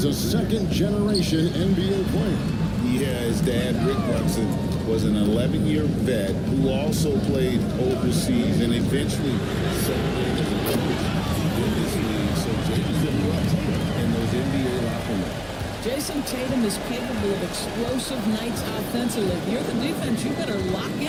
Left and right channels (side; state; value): both; identical; correlation 1.00